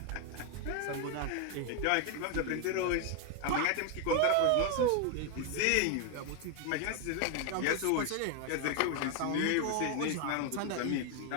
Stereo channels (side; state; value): both; different; correlation 0.01